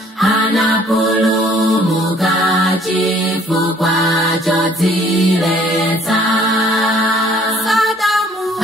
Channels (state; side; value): normal; both; correlation 0.58